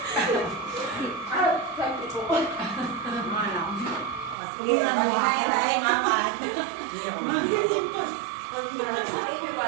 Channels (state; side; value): drops out; left; at 4.4 s